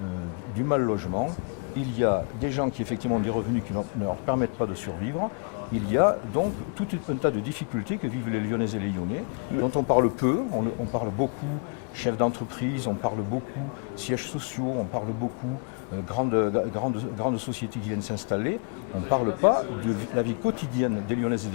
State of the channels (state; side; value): quieter; right; 39.4 dB